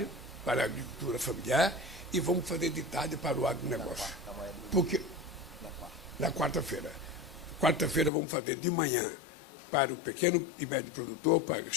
para a agricultura familiar, e vamos fazer de tarde para o agronegócio. Porque na quarta-feira. Quarta-feira vamos fazer de manhã para o pequeno e médio produtor, para a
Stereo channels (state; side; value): drops out; right; at 8.1 s